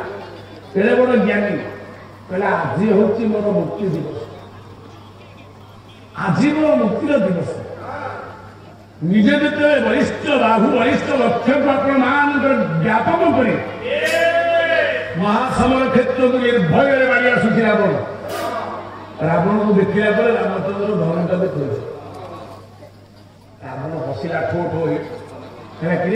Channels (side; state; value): both; identical; correlation 1.00